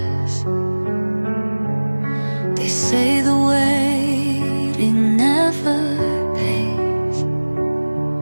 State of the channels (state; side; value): inverted; both; correlation -1.00